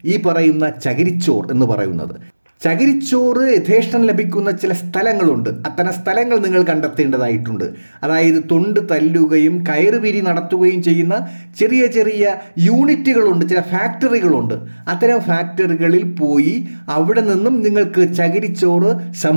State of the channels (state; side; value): inverted; both; correlation -1.00